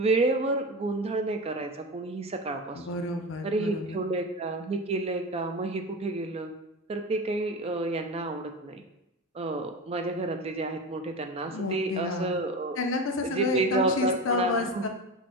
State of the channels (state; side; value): normal; both; correlation 0.25